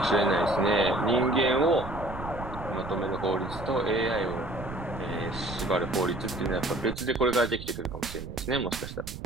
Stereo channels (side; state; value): right; noise; rumble, 10 dB below the sound